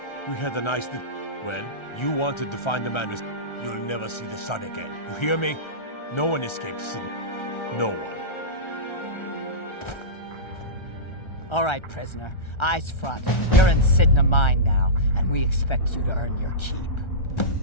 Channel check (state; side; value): late; right; 1.3 ms